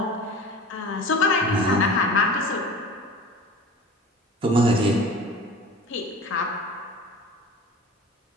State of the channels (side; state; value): both; normal; correlation 0.39